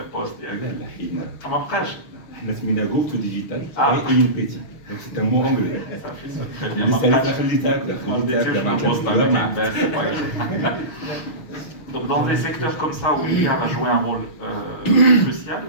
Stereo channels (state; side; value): late; right; 6.3 ms